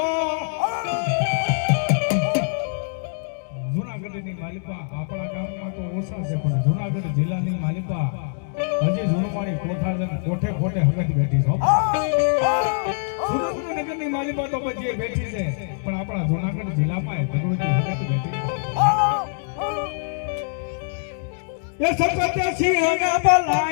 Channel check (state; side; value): silent; right; digital silence